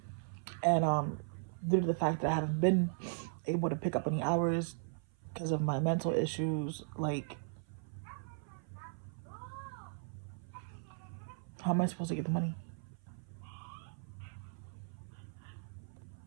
And due to the fact that I haven't been able to pick up any hours because of my mental issues, like, how am I supposed to get the money?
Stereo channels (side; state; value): left; silent; 53 dB below the other